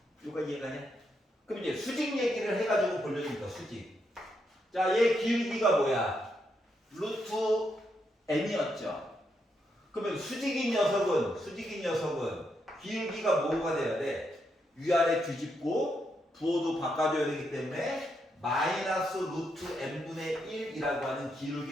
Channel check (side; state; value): both; normal; correlation 0.80